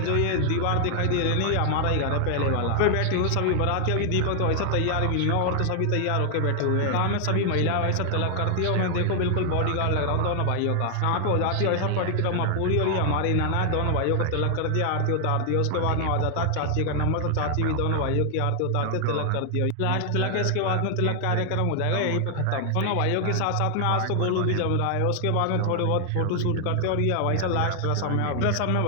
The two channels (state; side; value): different; both; correlation 0.00